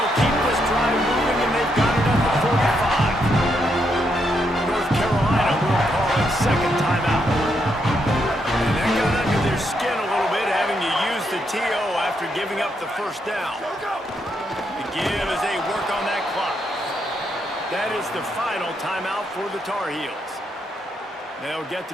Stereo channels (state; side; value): normal; both; correlation 0.78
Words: keep this drive moving, and they've got it at the 45. North Carolina will call it second timeout. And that got under their skin a little bit, having to use the TO after giving up the first down. The give as they work on that clock. That is the final timeout for the Tar Heels. They'll get